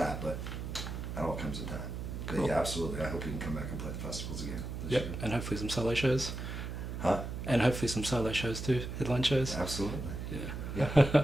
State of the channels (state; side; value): noise; right; hum, 6 dB below the sound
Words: but that all comes in time. Cool. But yeah, absolutely. I hope we can come back and play the festivals again this year. And hopefully some solo shows. Huh? And hopefully some solo shows too, headline shows. Absolutely. Yeah. Yeah.